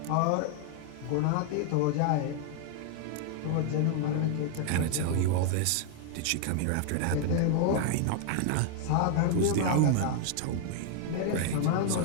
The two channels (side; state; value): both; different; correlation 0.00